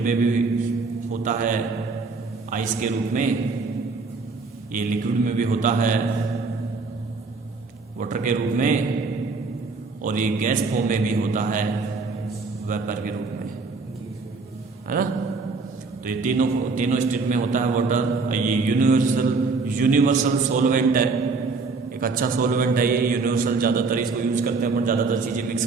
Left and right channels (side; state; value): left; quieter; 4.1 dB